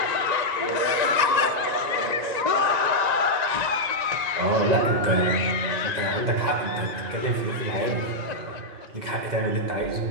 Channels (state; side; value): late; left; 2.0 ms